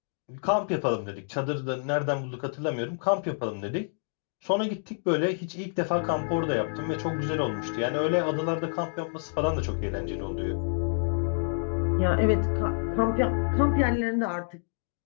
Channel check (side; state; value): right; silent; digital silence